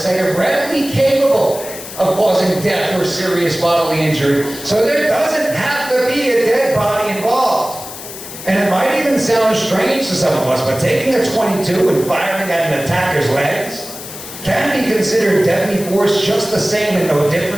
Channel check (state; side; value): noise; left; hiss, 12 dB below the sound